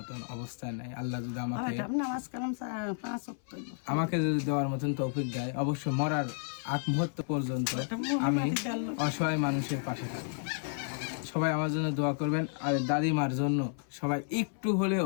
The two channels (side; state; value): right; silent; 56 dB below the other